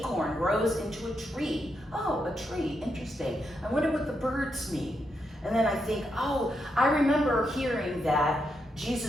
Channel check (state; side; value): normal; both; correlation 0.82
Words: grows into a tree. Oh, a tree, interesting. I wonder what the birds mean. And then I think, oh, I remember hearing that